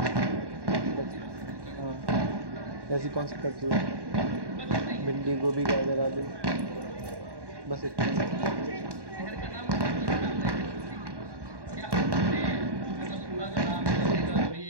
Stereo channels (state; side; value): late; left; 1.1 ms